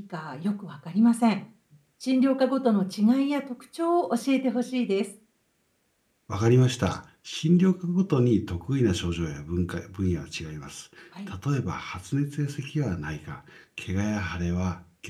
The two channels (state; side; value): identical; both; correlation 1.00